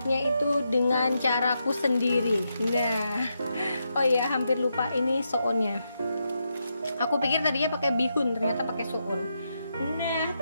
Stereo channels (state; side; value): inverted; both; correlation -0.83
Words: itu dengan caraku sendiri. Nah, oh ya hampir lupa, ini soonnya. Aku pikir tadinya pakai bihun, ternyata pakai soon. Nah